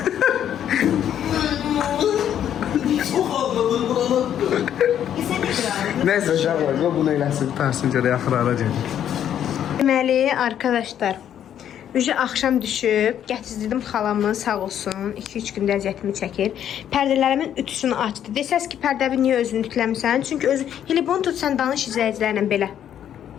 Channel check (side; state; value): right; quieter; 10.0 dB